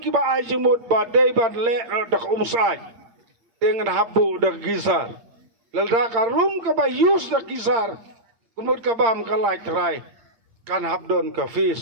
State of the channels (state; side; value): late; left; 8.8 ms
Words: kiba ay jumut badai badle dak umsai dengan habu dak gizar. Lalda karum kaba yus dak gizar. Kumut kabam kalai terai kan habdon ka